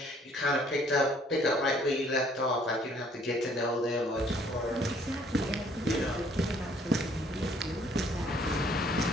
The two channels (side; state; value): both; normal; correlation 0.61